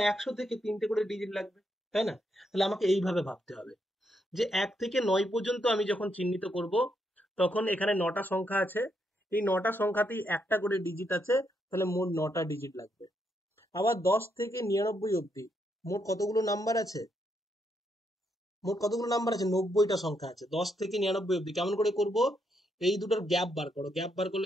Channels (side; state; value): both; normal; correlation 0.78